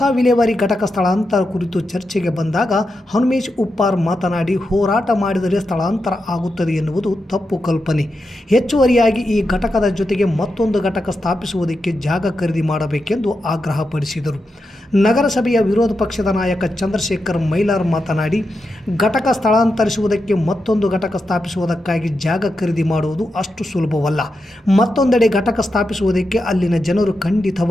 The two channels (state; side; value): normal; both; correlation 0.87